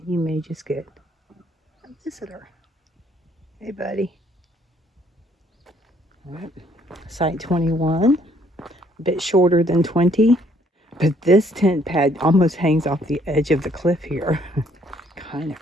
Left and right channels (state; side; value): normal; both; correlation 0.65